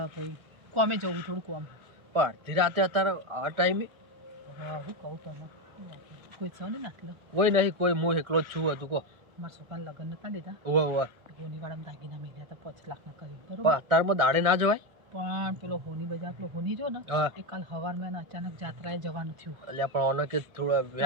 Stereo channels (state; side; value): late; left; 1.4 ms